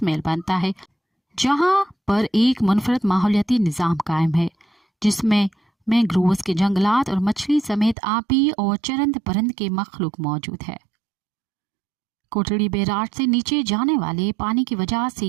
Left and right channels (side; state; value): left; drops out; at 8.0 s